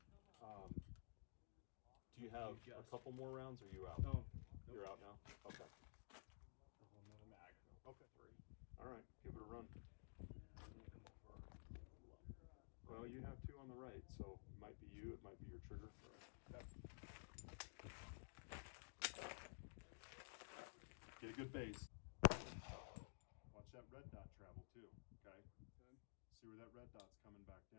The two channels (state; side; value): silent; right; digital silence